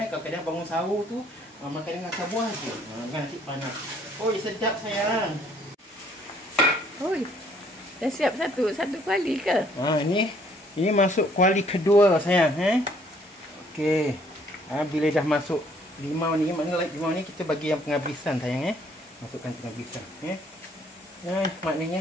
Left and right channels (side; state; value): both; normal; correlation 0.63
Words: Kadang-kadang bangun sahur tu makan dengan acar buah je. Nasi panas. Oi, sedap sayang. Oi. Dah siap satu kuali ke? Ini masuk kuali kedua sayang Okey. Bila dah masuk limau ni, maknanya limau ni kita bagi yang penghabisan sayang Masukkan penghabisan maknanya